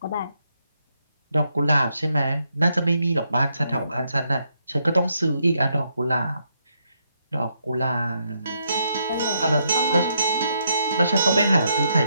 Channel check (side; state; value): both; inverted; correlation -0.78